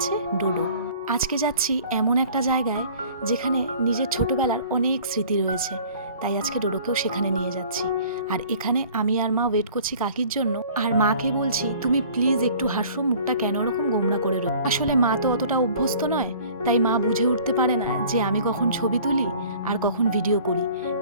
ডোডো। আজকে যাচ্ছি এমন একটা জায়গায় যেখানে নিজের ছোটবেলার অনেক স্মৃতি রয়েছে, তাই আজকে ডোডোকেও সেখানে নিয়ে যাচ্ছি। আর এখানে আমি আর মা ওয়েট করছি কাকির জন্য। আর মাকে বলছি, তুমি প্লিজ একটু হাসো, মুখটা কেন ওরকম গোমড়া করে রো। আসলে মা তো অতটা অভ্যস্ত নয়, তাই মা বুঝে উঠতে পারে না যে আমি কখন ছবি তুলি আর কখন ভিডিও করি,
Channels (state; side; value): inverted; both; correlation -0.49